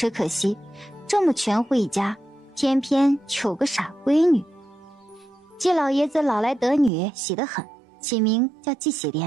可惜这么全户一家，偏偏有个傻闺女。季老爷子老来得女，喜得很，起名叫季喜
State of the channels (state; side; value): drops out; left; at 6.9 s